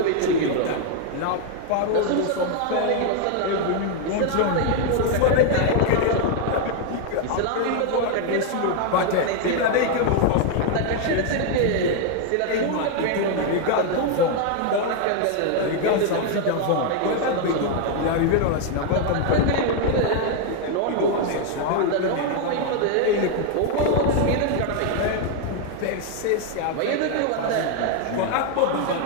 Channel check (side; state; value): both; different; correlation 0.00